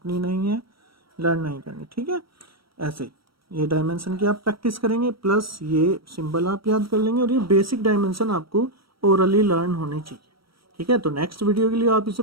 नहीं है, लर्न नहीं करनी। ठीक है, ऐसे ये डायमेंशन की आप प्रैक्टिस करेंगे, प्लस ये सिंबल आप याद कर लेंगे, और ये बेसिक डायमेंशन आपको ओरली लर्न होनी चाहिए। ठीक है, तो नेक्स्ट वीडियो के लिए आप इसे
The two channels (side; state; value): left; late; 0.75 ms